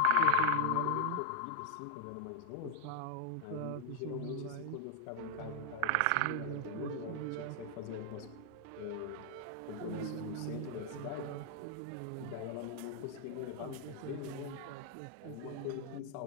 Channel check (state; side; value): different; both; correlation -0.01